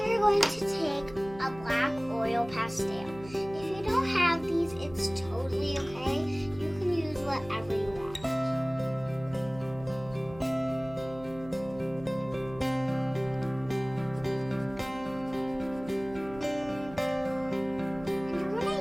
you're going to take a black oil pastel. If you don't have these, it's totally okay. You can use whatever you want.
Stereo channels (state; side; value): noise; right; hum, 17 dB below the sound